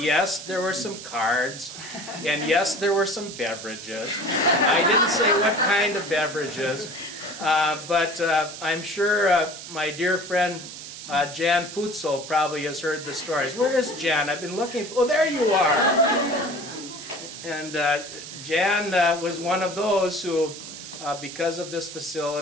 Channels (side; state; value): right; noise; hiss, 12 dB below the sound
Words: there were some cards, and yes, there were some beverages. I didn't say what kind of beverages, but I'm sure my dear friend Jan Putzel probably has heard the stories. Where is Jan? I've been looking for, oh, there you are. And Jan was one of those who, because of this